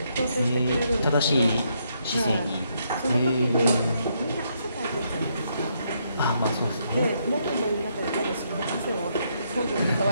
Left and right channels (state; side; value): inverted; both; correlation -0.75